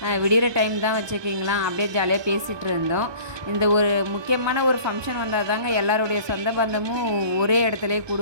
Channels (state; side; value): late; left; 1.2 ms